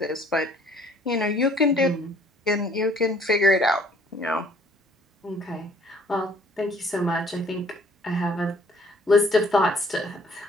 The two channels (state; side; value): normal; both; correlation 0.58